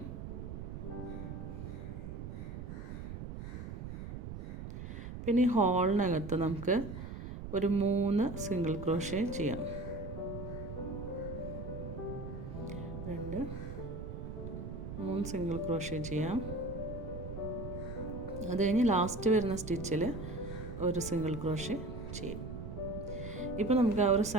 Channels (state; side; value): noise; right; rumble, 7 dB below the sound